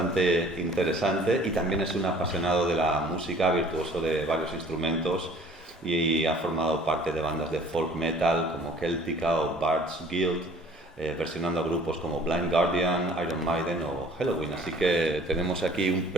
interesante, y también es un apasionado de la música, virtuoso de varios instrumentos, y ha formado parte de bandas de folk metal como Celtica o Bard's Guild, versionando a grupos como Blind Guardian, Iron Maiden o Helloween. Así que tenemos aquí un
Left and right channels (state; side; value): normal; both; correlation 0.52